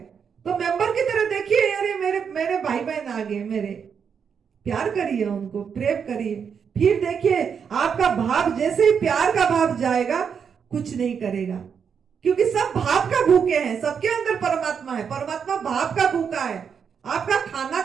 तो मेंबर की तरह देखिए, अरे मेरे भाई बहन आ गए मेरे, प्यार करिए उनको, प्रेम करिए। फिर देखिए आपका भाव, जैसे ही प्यार का भाव जाएगा, कुछ नहीं करेगा, क्योंकि सब भाव का भूखे हैं। सबके अंदर परमात्मा है, परमात्मा भाव का भूखा है। आपका खाना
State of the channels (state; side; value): quieter; left; 6.9 dB